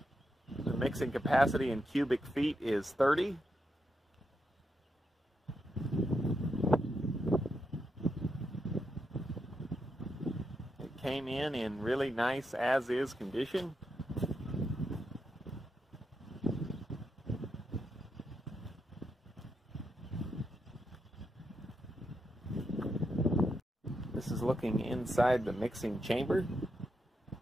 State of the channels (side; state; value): both; normal; correlation 0.83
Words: The mixing capacity in cubic feet is 30. It came in really nice as-is condition. This is looking inside the mixing chamber.